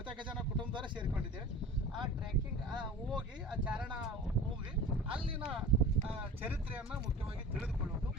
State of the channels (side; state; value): both; normal; correlation 0.36